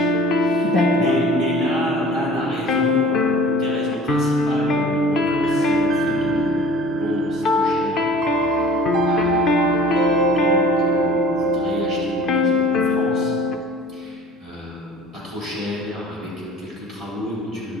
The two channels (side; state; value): both; normal; correlation 0.45